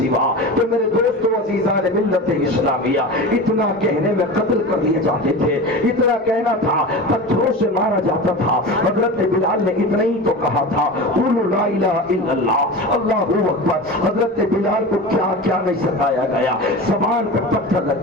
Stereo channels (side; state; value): both; normal; correlation 0.29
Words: تو میرے دوستو عزیزان ملت اسلامیہ، اتنا کہنے میں قتل کر دیے جاتے تھے، اتنا کہنا تھا پتھروں سے مارا جاتا تھا۔ حضرت بلال نے اتنا ہی تو کہا تھا قولوا لا الہ الا اللہ، اللہ اکبر۔ حضرت بلال کو کیا کیا نہیں ستایا گیا، زبان پہ پتھر